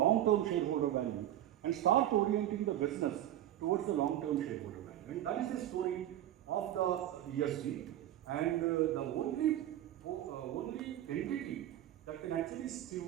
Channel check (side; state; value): left; quieter; 12.5 dB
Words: shareholder value and start orienting the business towards the long-term shareholder value. And that is the story of the ESG. And the only entity that can actually